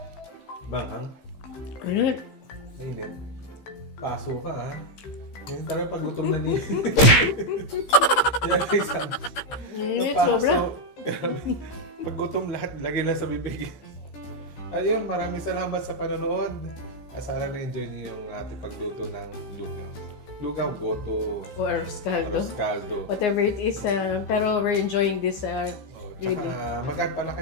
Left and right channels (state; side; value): late; right; 16 ms